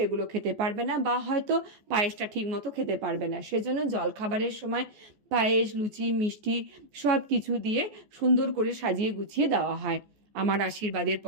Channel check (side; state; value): left; late; 14 ms